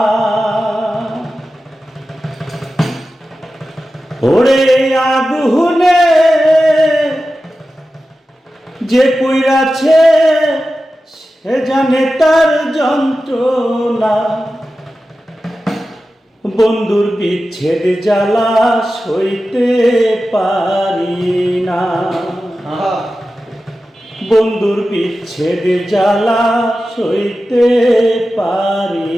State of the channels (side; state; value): both; normal; correlation 0.93